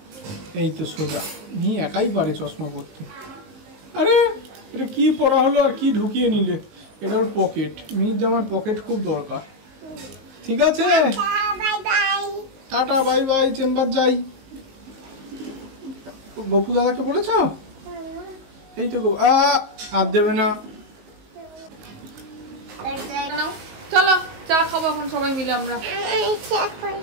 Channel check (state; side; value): late; left; 19 ms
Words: এই তো সোজা, মি একাই পারে চশমা পরতে। আরে এটা কি পরা হলো আর কি ঢুকিয়ে নিলে? এটা ওর পকেট, মির জামার পকেট খুব দরকার। ঠিক আছে, টাটা বাই বাই, চেম্বার যাই। গপু দাদাকে বলেছ? এই তো আর দেবে না। নাও, চলো চা খাবো এখন সবাই মিলে আমরা।